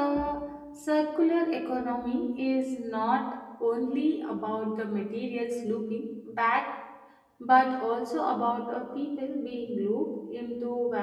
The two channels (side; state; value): both; identical; correlation 1.00